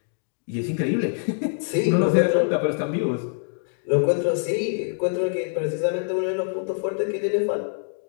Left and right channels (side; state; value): right; silent; 62 dB below the other